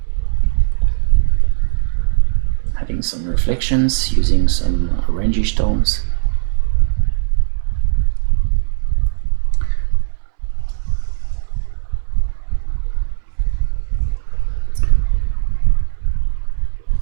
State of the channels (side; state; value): left; silent; 66 dB below the other